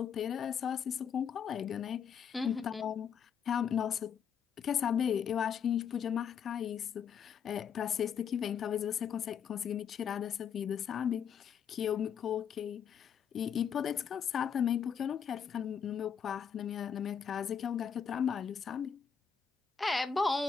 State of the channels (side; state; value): right; quieter; 7.5 dB